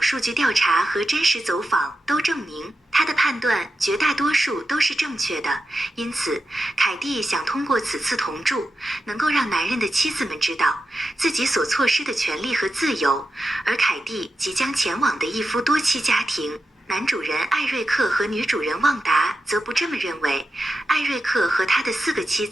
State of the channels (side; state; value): both; normal; correlation 0.90